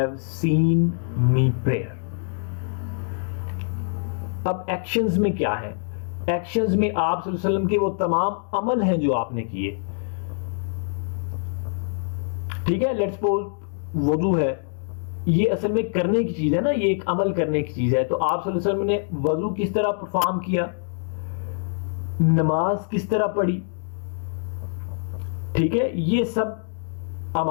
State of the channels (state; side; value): silent; right; digital silence